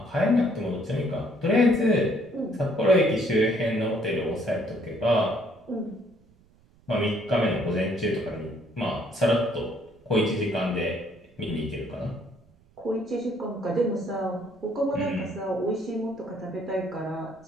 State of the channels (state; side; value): noise; right; rumble, 30 dB below the sound